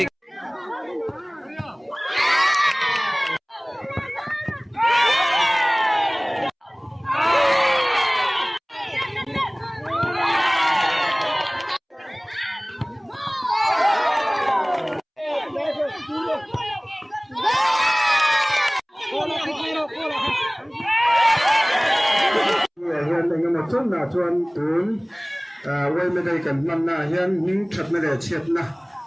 hiện tại một chút là chuan tún quay bên đây cần năm na hiện những thật mới để chết na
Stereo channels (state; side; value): identical; both; correlation 1.00